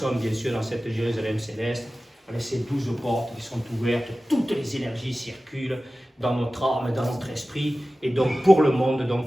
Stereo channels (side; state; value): both; normal; correlation 0.96